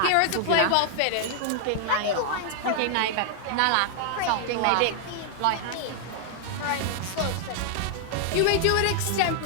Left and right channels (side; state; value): both; different; correlation 0.00